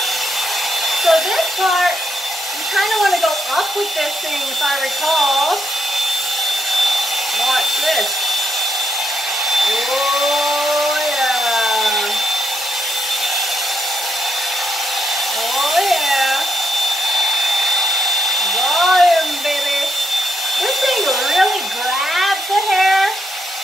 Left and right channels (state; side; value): normal; both; correlation 0.79